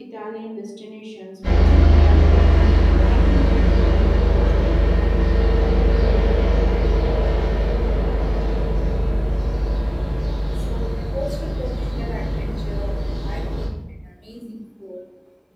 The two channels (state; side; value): identical; both; correlation 1.00